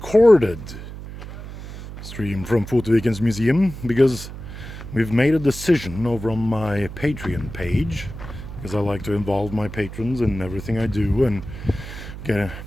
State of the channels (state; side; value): noise; right; hum, 11 dB below the sound